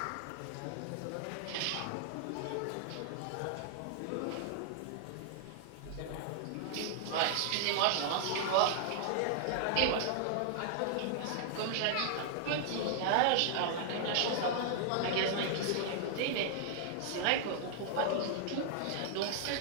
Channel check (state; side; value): different; both; correlation -0.01